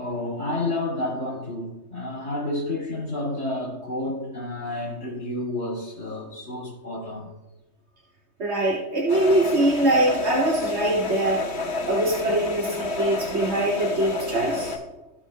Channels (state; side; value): late; left; 3.2 ms